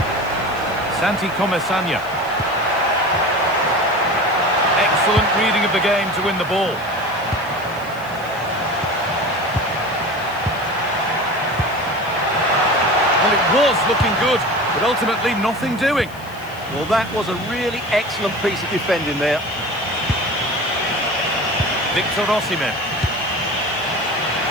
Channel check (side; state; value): left; noise; hiss, 22 dB below the sound